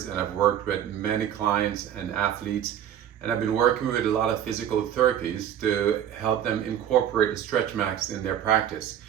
and I've worked with many clients and athletes, and I've been working with a lot of physical therapies to help them incorporate the StretchMaxx in their practice.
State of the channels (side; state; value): left; quieter; 10.1 dB